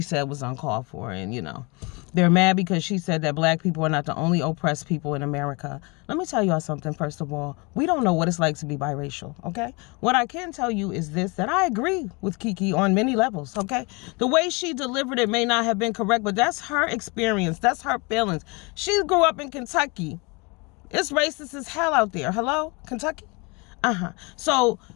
was uncalled for, and they're mad because she said that black people are not the only oppressed people in America. Let me tell y'all something. First of all, we don't know what it's like to be biracial, okay? What I can tell you is this, that I agree with Keke on many levels, okay? The way she delivered it may not have been correct, but that's her experience. That's her feelings. She grew up in Kentucky. It's racist as hell out there. Hello? Kentucky? So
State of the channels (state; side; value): quieter; right; 28.7 dB